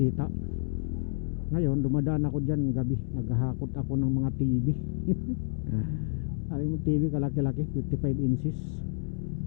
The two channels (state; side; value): silent; right; 58 dB below the other